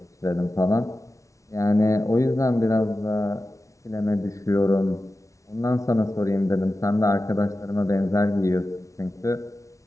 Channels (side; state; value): right; late; 0.15 ms